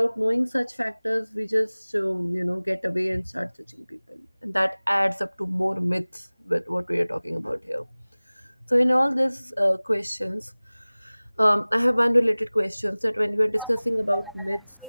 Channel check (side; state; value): both; inverted; correlation -1.00